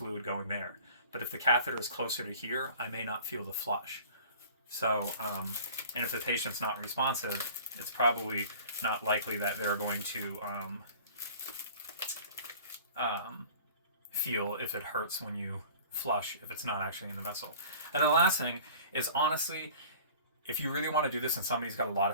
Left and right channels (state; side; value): inverted; both; correlation -0.45